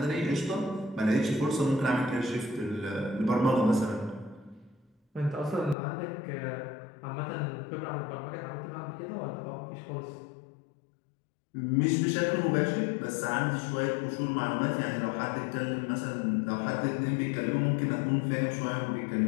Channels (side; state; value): right; drops out; at 5.8 s